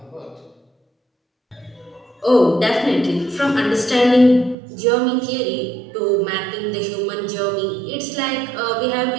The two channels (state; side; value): drops out; left; at 4.5 s